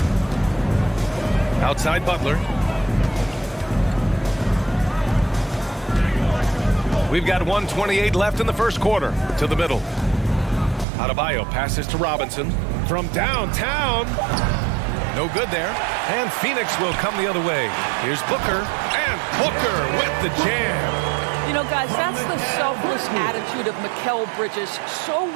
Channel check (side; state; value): left; drops out; at 10.9 s